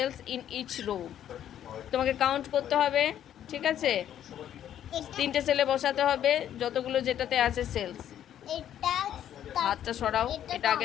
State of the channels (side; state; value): right; quieter; 10.6 dB